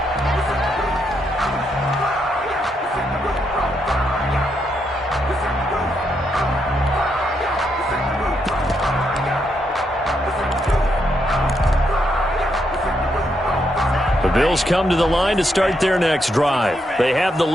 The Bills come to the line to start their next drive. They have the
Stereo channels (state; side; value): normal; both; correlation 0.79